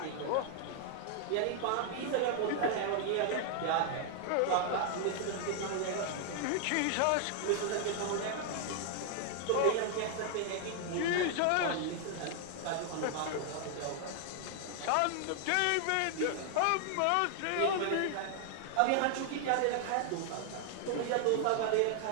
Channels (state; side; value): different; both; correlation 0.00